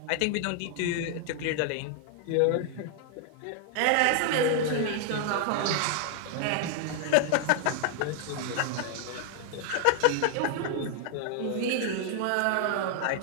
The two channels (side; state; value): both; different; correlation 0.00